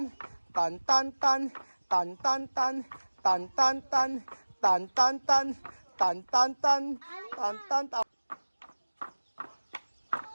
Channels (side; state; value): both; inverted; correlation -1.00